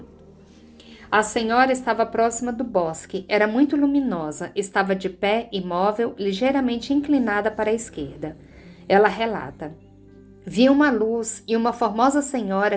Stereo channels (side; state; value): both; identical; correlation 1.00